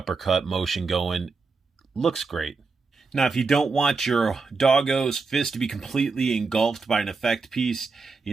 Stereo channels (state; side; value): quieter; left; 4.4 dB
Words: motion going. Looks great. Now, if you don't want your Doggo's fist to be completely engulfed by an effect piece,